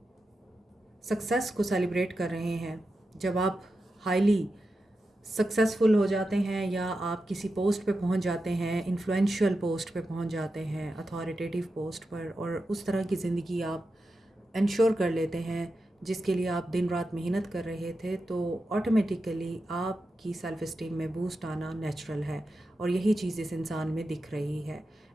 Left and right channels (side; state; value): both; normal; correlation 0.90